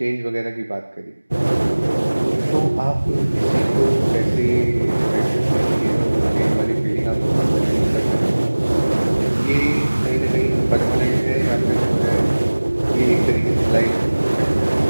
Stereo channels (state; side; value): inverted; both; correlation -1.00